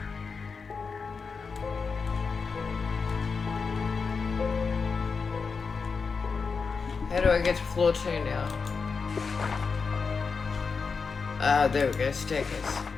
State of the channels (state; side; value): quieter; right; 5.1 dB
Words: How do I get to floor 2 now? There we go, staircase.